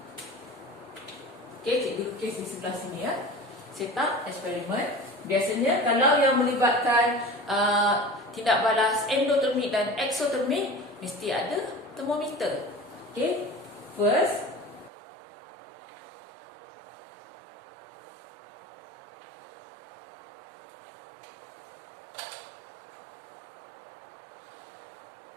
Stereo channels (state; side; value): drops out; left; at 14.9 s